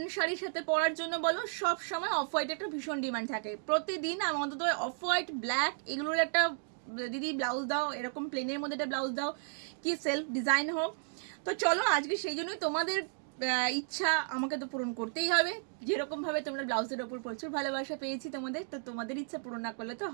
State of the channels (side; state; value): left; silent; digital silence